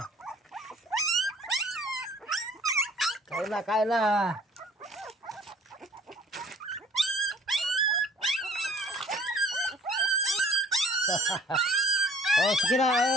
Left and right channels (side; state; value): both; normal; correlation 0.54